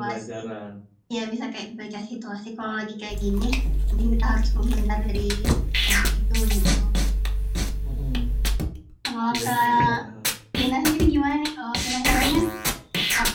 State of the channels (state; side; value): identical; both; correlation 1.00